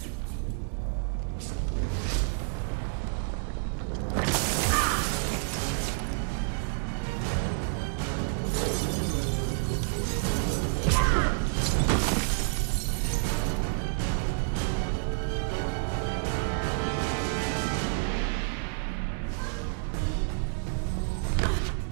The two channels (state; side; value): silent; left; 59 dB below the other